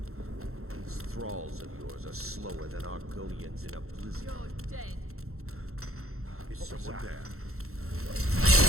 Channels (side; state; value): left; late; 0.63 ms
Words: These thralls of yours are slower than Argonians in a blizzard. You're dead. Is someone there?